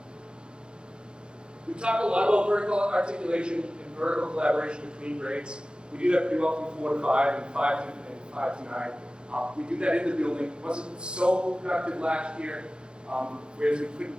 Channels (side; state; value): left; late; 0.051 ms